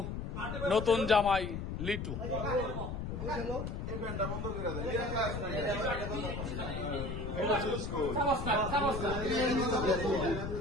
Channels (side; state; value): left; noise; rumble, 5 dB below the sound